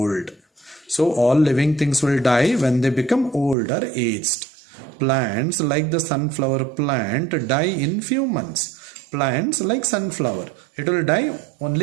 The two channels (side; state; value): left; drops out; at 3.6 s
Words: So all living things will die when they become old or aged. Plants like the sunflower plant die in few months. Plants like sunflower, it will die